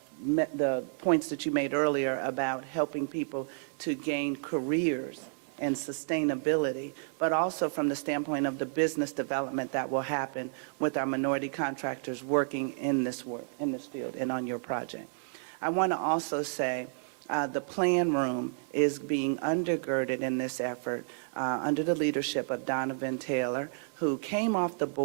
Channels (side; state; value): left; silent; digital silence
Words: points that you made earlier about helping people to gain careers and sustainability, but also from the standpoint of the business development that will happen with our minority contractors working in this field and on your project. I want to also say the plan room is being undergirded in this effort under the leadership of Donovan Taylor, who came off the